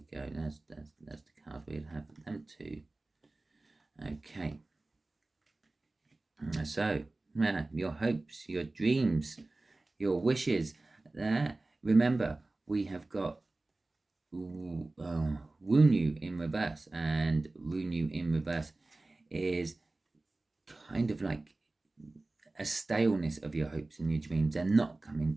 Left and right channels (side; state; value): left; quieter; 3.0 dB